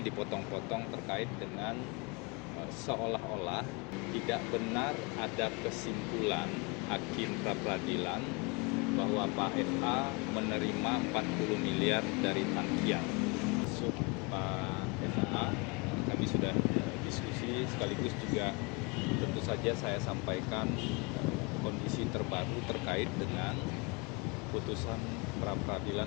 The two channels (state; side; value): quieter; right; 29.5 dB